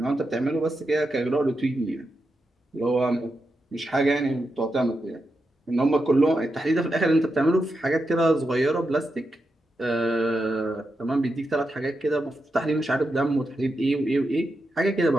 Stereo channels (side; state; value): both; normal; correlation 0.87